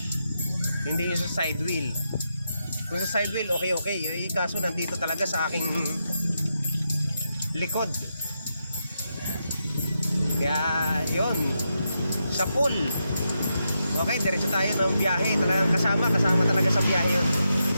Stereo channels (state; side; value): inverted; both; correlation -0.85